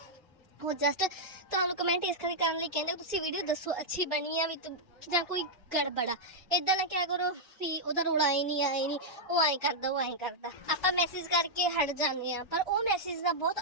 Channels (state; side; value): normal; both; correlation -0.05